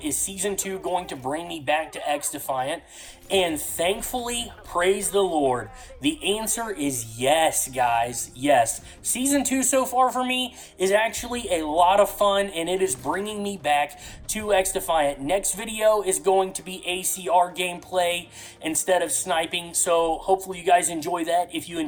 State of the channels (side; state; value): both; identical; correlation 1.00